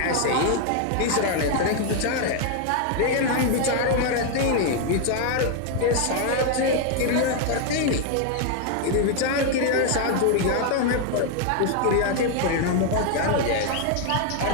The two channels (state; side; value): different; both; correlation 0.00